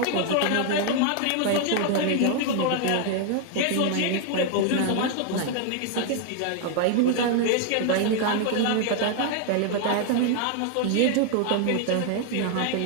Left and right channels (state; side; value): different; both; correlation 0.00